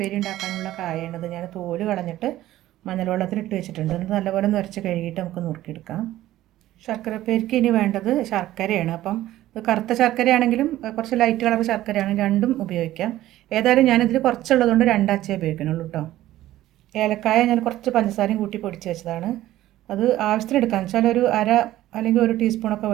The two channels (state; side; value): quieter; left; 14.6 dB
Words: ഉണ്ടാക്കാനുള്ള കായയാണിത്. ഞാൻ തോല് കളഞ്ഞിട്ട് മഞ്ഞൾ വെള്ളത്തിലിട്ട് വെച്ചിട്ടുണ്ട്. ഇത് നല്ലപോലെ നുരച്ച് കഴുകിയിട്ട് നമുക്ക് നുറുക്കിയെടുക്കാം. ശർക്കര ഉപ്പേരിക്ക് ഇനി വേണ്ടത് ശർക്കരയാണ്. അപ്പം ഇത് കറുത്ത ശർക്കരയാണെങ്കിലും കുറച്ച് ലൈറ്റ് കളർ ശർക്കരയാണ്, രണ്ടും ഉപയോഗിക്കാം. ഏതായാലും ഞാനിതിൽ കുറച്ചുള്ളതുകൊണ്ട് 2 അച്ചേ ഉപയോഗിക്കണുള്ളൂ കേട്ടോ. ഏലക്കായ ഞാൻ കുറച്ച് പഞ്ചസാരയും കൂട്ടി പൊടിച്ച് വെച്ചതാണ്. അത് ആവശ്യത്തിന് എടുക്കാം. വെച്ചാൽ ഒരു അര അല്ലെങ്കിൽ 1 ടീസ്പൂണൊക്കെ